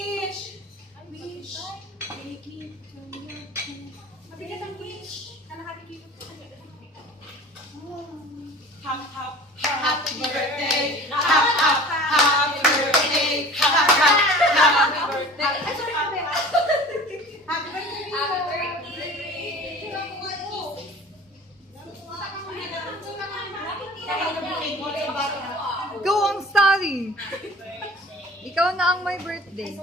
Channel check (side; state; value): both; normal; correlation 0.42